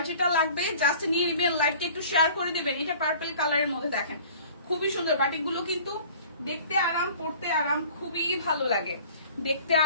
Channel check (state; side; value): inverted; both; correlation -0.48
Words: যেটা লাগবে জাস্ট নিয়ে নেবেন, লাইভটা একটু শেয়ার করে দিবেন। এটা পার্পল কালারের মধ্যে দেখেন, খুবই সুন্দর বাটিক গুলো, কিন্তু দেখতে আরাম, পড়তে আরাম, খুবই ভালো লাগে। দেখতে